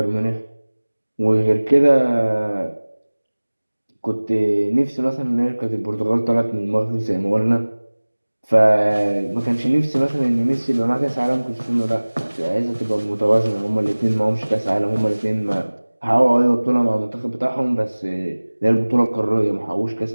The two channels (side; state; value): both; inverted; correlation -1.00